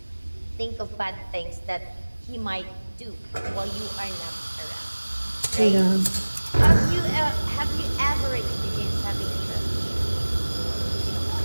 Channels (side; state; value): both; inverted; correlation -1.00